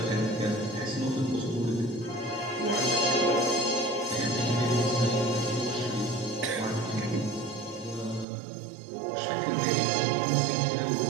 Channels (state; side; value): drops out; left; at 8.2 s